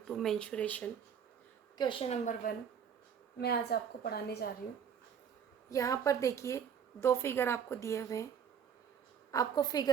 mensuration. Question number 1 मैं आज आपको पढ़ाने जा रही हूँ। यहाँ पर देखिए दो फिगर आपको दिए हुए हैं। आपको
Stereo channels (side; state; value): left; quieter; 7.8 dB